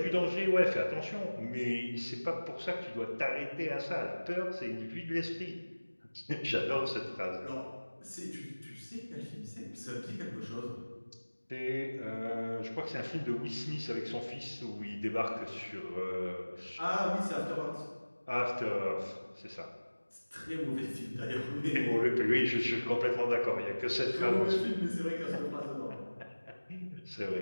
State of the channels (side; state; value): both; inverted; correlation -1.00